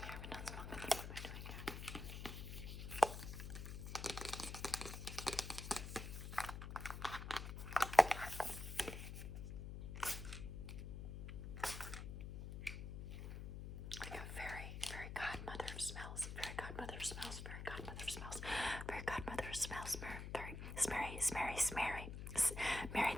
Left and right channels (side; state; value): left; noise; hum, 7 dB below the sound